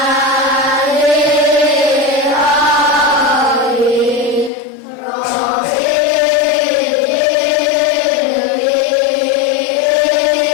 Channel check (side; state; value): right; drops out; at 4.5 s